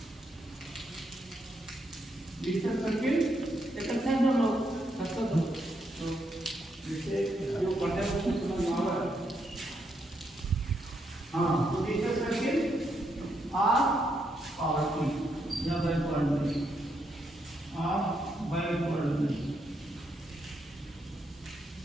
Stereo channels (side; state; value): both; normal; correlation 0.79